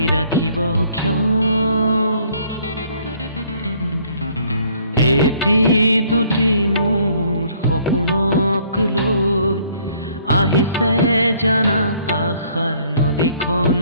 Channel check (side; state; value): both; inverted; correlation -0.61